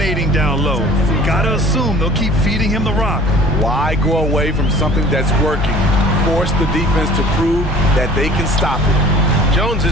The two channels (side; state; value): both; normal; correlation 0.48